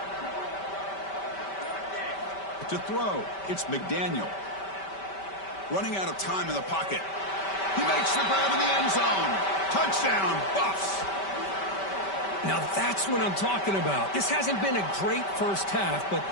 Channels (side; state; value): right; late; 5.2 ms